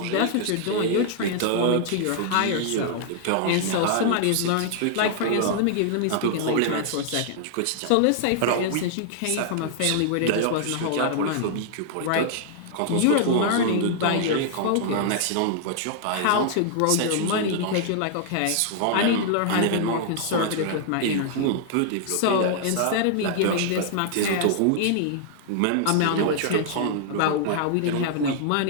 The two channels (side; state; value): both; different; correlation -0.01